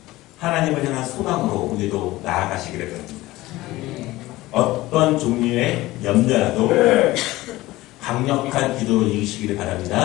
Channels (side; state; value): right; quieter; 18.1 dB